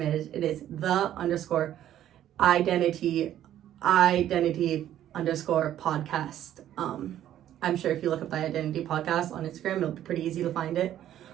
is, it is _Identi_podcast. I'm sure if you look up the Identity podcast on Instagram, it'll be pretty easy to find it.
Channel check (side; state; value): left; quieter; 11.7 dB